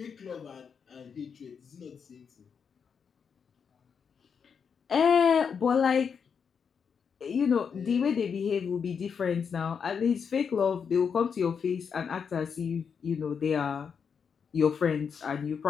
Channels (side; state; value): right; quieter; 6.5 dB